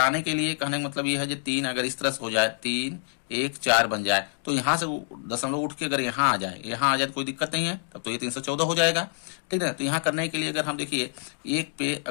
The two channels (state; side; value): silent; right; digital silence